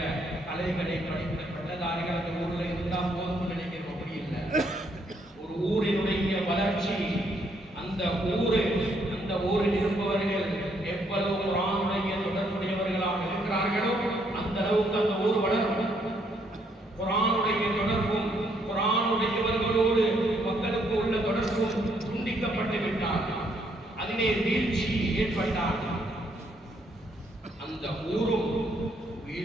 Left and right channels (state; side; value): normal; both; correlation 0.71